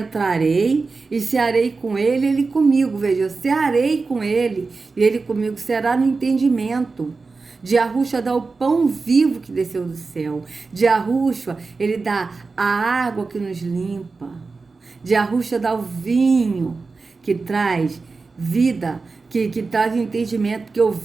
e cearei com ele, ele comigo. Veja, eu cearei com ele e ele comigo, será no entendimento. De Yahushua dá o pão vivo que desceu do céu. De Yahushua, ele dá a água que nos limpa. De Yahushua dá o vinho que traz vida, que traz entendimento, porque o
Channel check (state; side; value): quieter; left; 4.1 dB